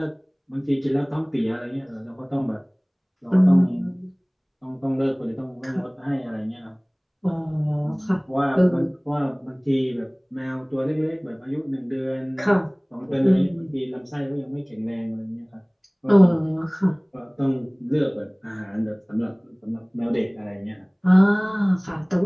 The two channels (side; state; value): both; identical; correlation 1.00